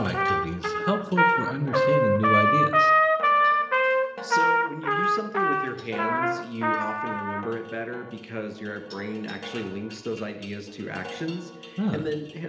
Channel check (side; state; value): both; identical; correlation 1.00